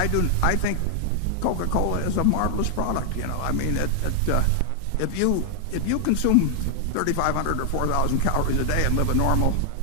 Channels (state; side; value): different; both; correlation 0.00